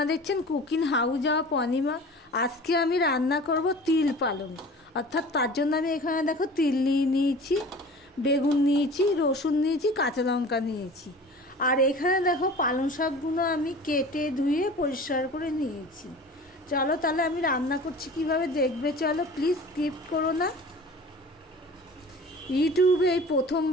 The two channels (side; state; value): both; normal; correlation 0.41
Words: দেখছেন কুকিং হাউস অফ অনিমা। আজকে আমি রান্না করব তিল পালং, অর্থাৎ তার জন্য আমি এখানে দেখো তিল নিয়েছি, বেগুন নিয়েছি, রসুন নিয়েছি, কাঁচা লঙ্কা নিয়েছি। আর এখানে দেখো পালং শাকগুলো আমি কেটে ধুয়ে পরিষ্কার করে নিয়েছি। চলো তাহলে আমি রান্না করছি কিভাবে দেখবে। চলো, প্লিজ স্কিপ করো না। ইউটিউবে এই